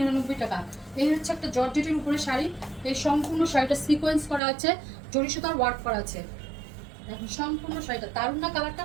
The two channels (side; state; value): left; drops out; at 4.4 s